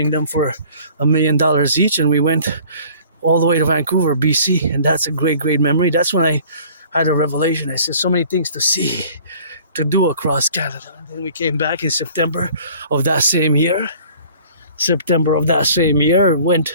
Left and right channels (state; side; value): inverted; both; correlation -0.50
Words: them for $1 million each, and we went all the way to Vancouver, BC, and that's a great, great memory. That's when I had a revelation. I said, so many things to see, to do across Canada. And then we came back in September of that same year.